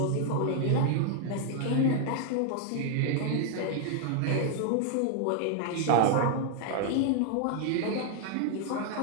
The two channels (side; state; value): both; different; correlation 0.00